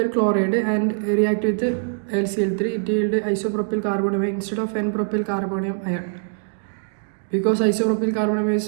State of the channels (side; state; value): left; silent; digital silence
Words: chloride and react with LCl3 it yield isopropyl carbonium instead of n-propyl carbonium ion because isopropyl carbonium is